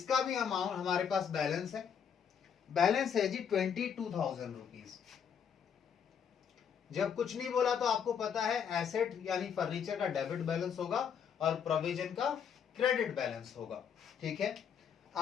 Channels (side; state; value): right; quieter; 7.6 dB